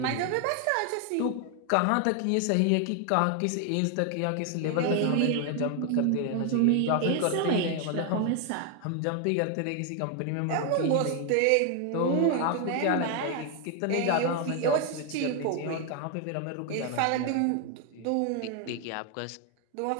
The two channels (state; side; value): different; both; correlation 0.01